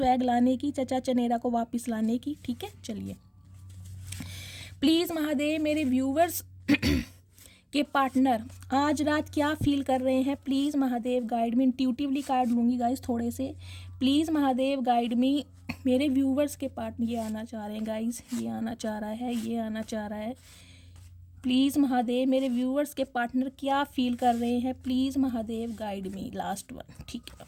लाने की, चचा चनेरा को वापस लाने की। ठीक है, चलिए, प्लीज़ महादेव, मेरे व्यूवर्स के पार्टनर आज रात क्या फील कर रहे हैं, please Mahadev guide me. Intuitively card लूँगी गाइज़ थोड़े से, प्लीज़ महादेव गाइड मी। मेरे व्यूवर्स के पार्टनर ये आना चाह रहे हैं गाइज़, ये आना चाह रहा है, ये आना चाह रहा है, प्लीज़ महादेव, मेरे व्यूवर्स के पार्टनर क्या फील कर रहे हैं, please Mahadev guide me. Last one, ठीक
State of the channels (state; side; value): identical; both; correlation 1.00